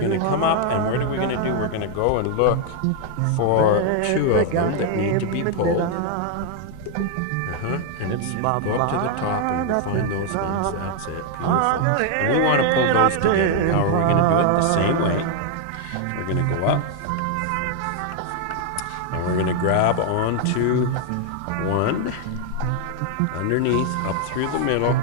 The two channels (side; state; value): both; different; correlation 0.00